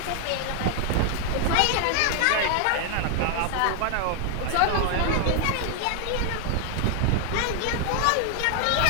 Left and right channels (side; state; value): both; different; correlation 0.00